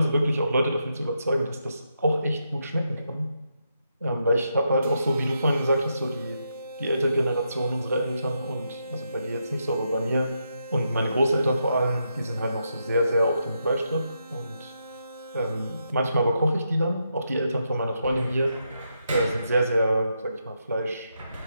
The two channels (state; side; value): inverted; both; correlation -0.82